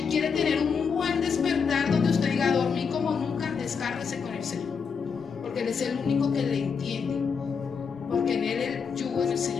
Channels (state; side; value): quieter; right; 6.0 dB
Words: ¿Quiere tener un buen despertar donde usted diga, dormí como nunca? Descárguese con el Señor, porque Él es el único que le entiende, porque en Él el yugo es el